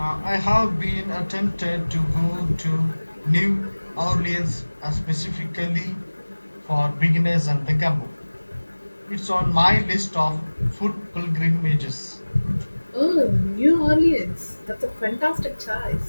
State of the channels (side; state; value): both; inverted; correlation -1.00